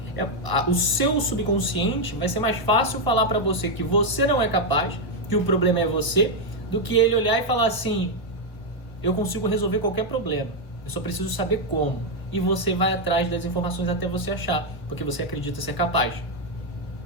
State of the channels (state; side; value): late; right; 1.2 ms